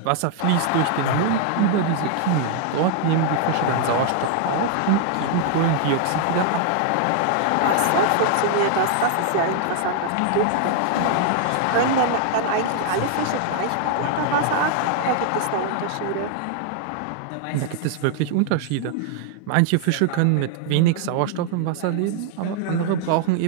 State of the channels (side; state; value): both; different; correlation 0.00